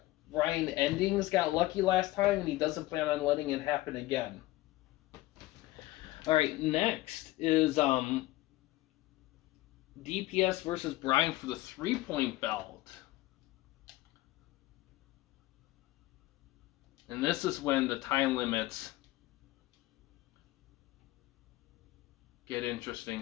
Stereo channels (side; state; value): right; quieter; 17.8 dB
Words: Endings got lucky last time, and he doesn't plan on letting it happen again. All right, next is DPS versus Brian for the 3-point belt. And this is when the time limits get